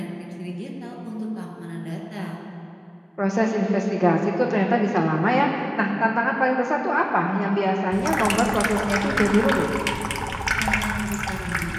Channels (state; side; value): identical; both; correlation 1.00